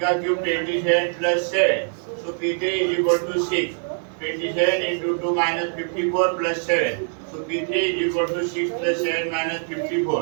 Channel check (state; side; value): silent; left; 58 dB below the other